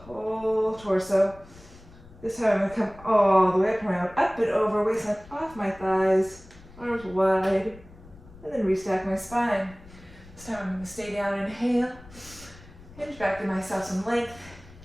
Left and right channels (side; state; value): left; noise; rumble, 21 dB below the sound